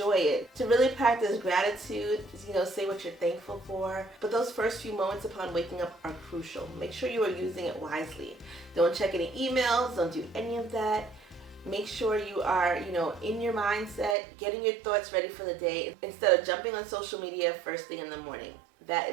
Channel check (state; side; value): drops out; left; at 14.2 s